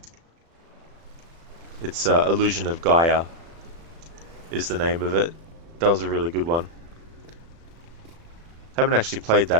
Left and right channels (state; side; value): late; left; 36 ms